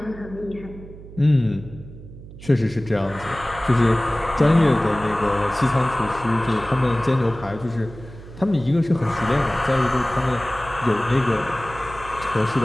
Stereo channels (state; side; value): noise; right; hum, 16 dB below the sound